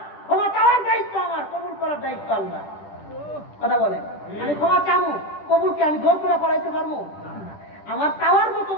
ক্ষমা চাওয়ার দায়িত্ব আমার, কবুল করার দায়িত্ব আল্লাহ, কথা বলেন। আমি ক্ষমা চাবো, কবুল কি আমি জোর করে করাইতে পারবো? আমার চাওয়ার মতন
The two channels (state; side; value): late; right; 10 ms